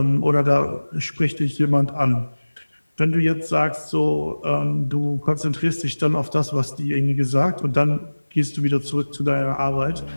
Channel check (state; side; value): inverted; both; correlation -1.00